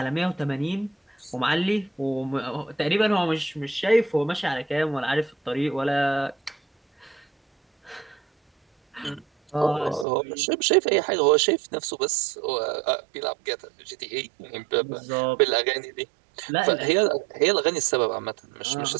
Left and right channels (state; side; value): drops out; left; at 10.1 s